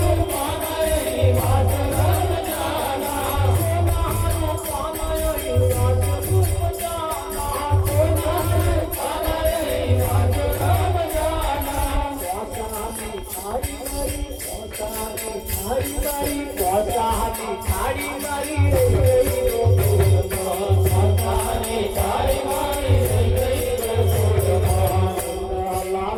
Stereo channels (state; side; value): identical; both; correlation 1.00